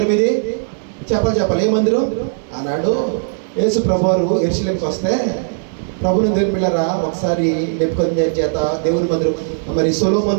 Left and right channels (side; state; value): left; silent; digital silence